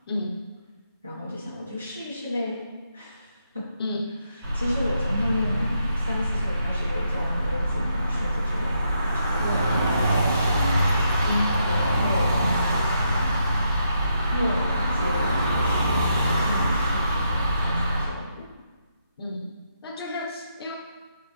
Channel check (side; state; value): both; inverted; correlation -0.79